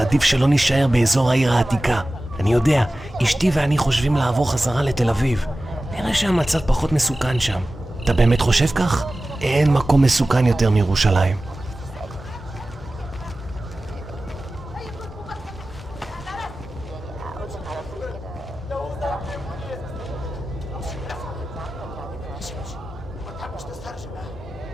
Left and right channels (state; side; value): normal; both; correlation 0.96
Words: עדיף שלא נשאר באזור העיר העתיקה. אני יודע, אשתי ואני חושבים לעבור חזרה לתל אביב. נראה שהמצב פחות מסוכן שם. אתה באמת חושב כך? אין מקום מסוכן יותר מירושלים.